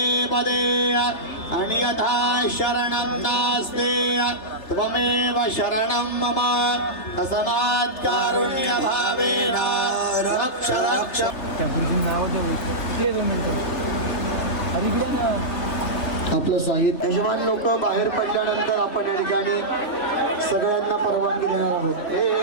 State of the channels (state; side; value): late; right; 3.3 ms